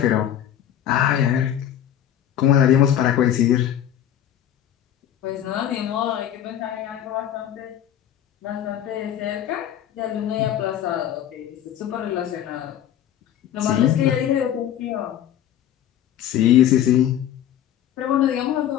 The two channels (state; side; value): quieter; right; 10.7 dB